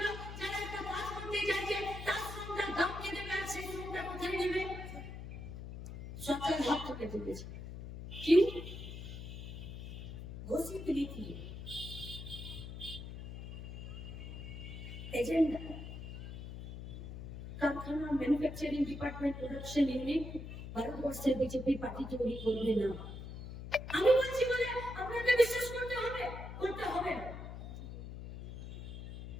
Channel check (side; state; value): left; noise; hum, 9 dB below the sound